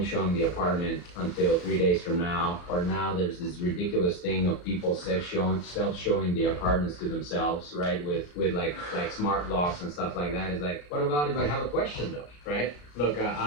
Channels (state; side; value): late; right; 34 ms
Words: show them the apartment until 3 days from now. Or now there's this ridiculous thing of people self-showing the apartments to themselves, right? With like smart locks and stuff like that. It's like, what about if I have a question though, right? Look,